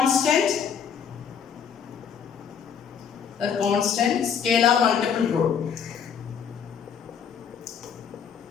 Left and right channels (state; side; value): quieter; right; 7.3 dB